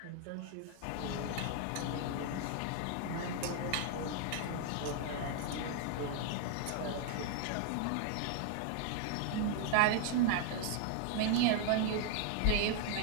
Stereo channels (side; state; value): both; different; correlation 0.00